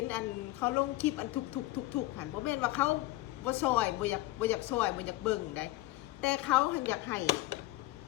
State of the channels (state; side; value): quieter; right; 17.6 dB